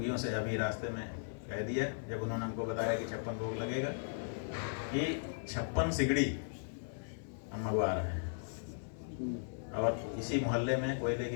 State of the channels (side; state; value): right; silent; digital silence